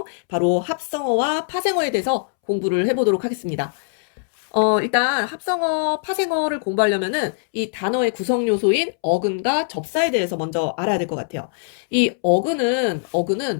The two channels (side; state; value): right; silent; 65 dB below the other